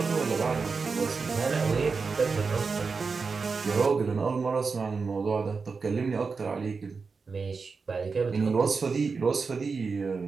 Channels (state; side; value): quieter; left; 4.8 dB